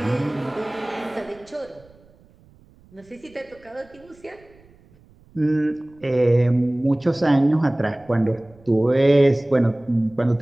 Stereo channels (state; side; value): noise; right; rumble, 28 dB below the sound